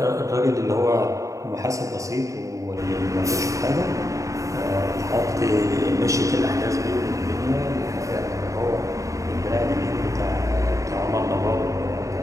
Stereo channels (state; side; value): late; left; 0.16 ms